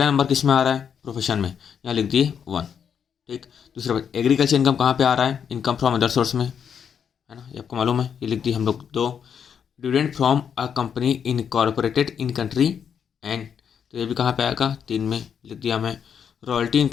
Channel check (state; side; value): quieter; right; 7.6 dB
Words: नंबर किस में आ रहा है, प्रोफेशन में, यहाँ लिख दिए 1। ठीक, दूसरा बात, एग्रीकल्चर इनकम कहाँ पे आ रहा है, इनकम फ्रॉम अदर सोर्स में, है ना, ये आपको मालूम है, ये लिख दी हम लोग 2। Dividend from a company incorporated in country and, तो ये भी कहाँ पे आएगा, 3 में लिख दिया मैं। Royalty